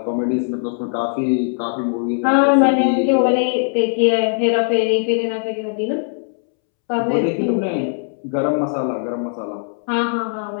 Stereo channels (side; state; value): right; silent; 66 dB below the other